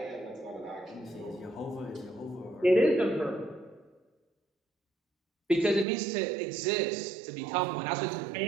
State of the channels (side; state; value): left; drops out; at 5.9 s